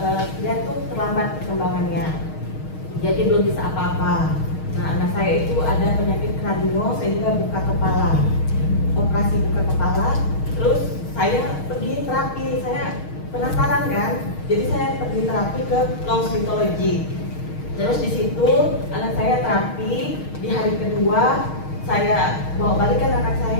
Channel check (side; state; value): right; late; 6.4 ms